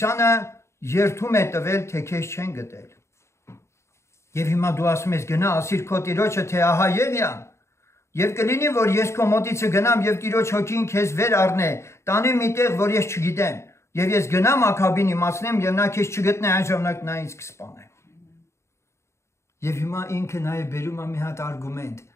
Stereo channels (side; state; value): right; late; 0.13 ms